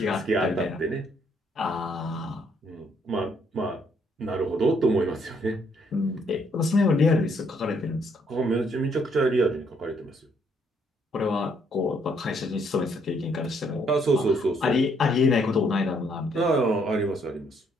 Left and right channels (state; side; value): normal; both; correlation 0.69